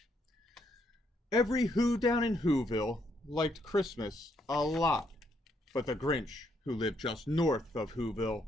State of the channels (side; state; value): both; normal; correlation 0.74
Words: Every Who down in Whoville liked Christmas a lot, but the Grinch, who lived just north of Whoville,